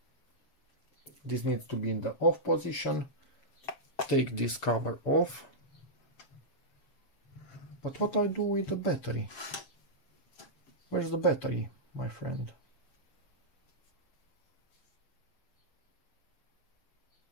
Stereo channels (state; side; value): late; right; 7.4 ms